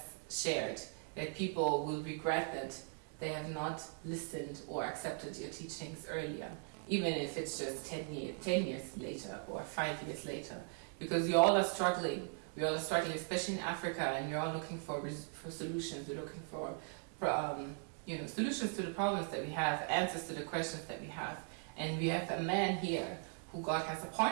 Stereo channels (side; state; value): left; silent; 52 dB below the other